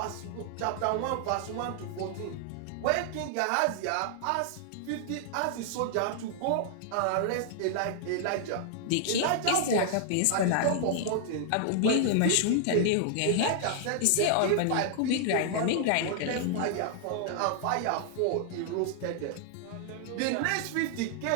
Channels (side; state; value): both; different; correlation -0.01